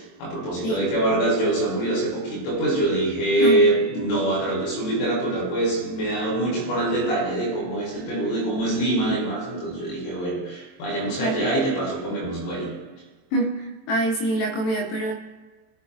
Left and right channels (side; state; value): right; late; 23 ms